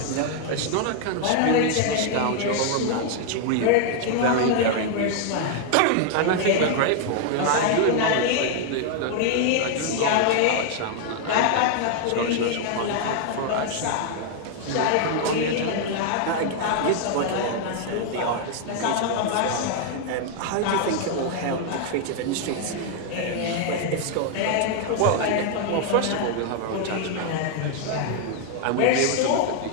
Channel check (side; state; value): both; different; correlation 0.00